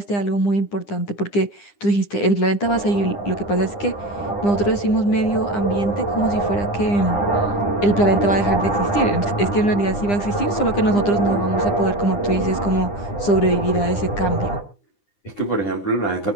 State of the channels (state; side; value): late; right; 9.9 ms